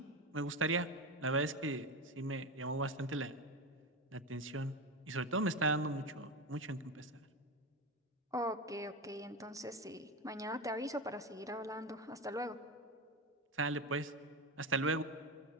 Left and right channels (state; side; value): normal; both; correlation 0.18